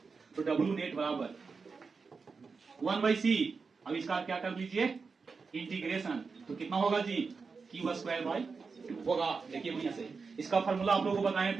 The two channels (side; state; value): left; quieter; 4.8 dB